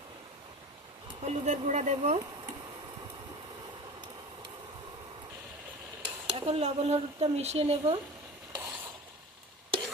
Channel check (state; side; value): normal; both; correlation 0.35